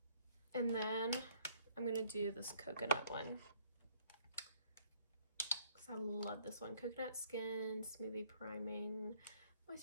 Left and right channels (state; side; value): inverted; both; correlation -0.63